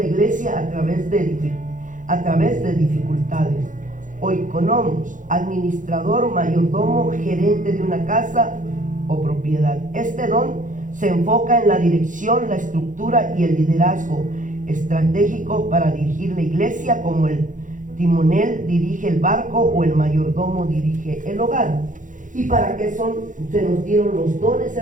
iglesia a través de dificultades. Oikonomos, administrador, mayordomo, gerente de una casa o propiedad. Este don se enfoca en la dirección, la estructura y el liderazgo estratégico para dirigir la iglesia, como el timonel dirige el barco o el mayordomo dirige el hogar. ¿Y para qué se nos dieron los dones,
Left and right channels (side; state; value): left; late; 0.37 ms